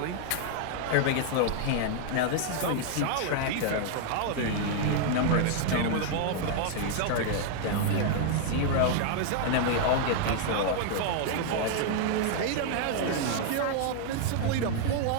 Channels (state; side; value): different; both; correlation 0.00